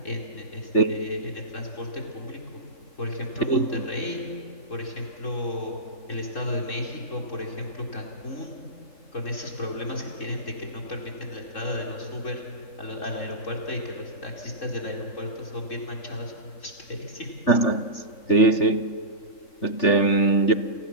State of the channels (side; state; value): right; late; 3.7 ms